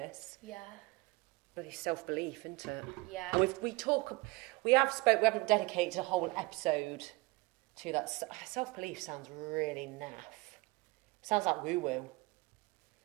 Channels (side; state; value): left; quieter; 23.4 dB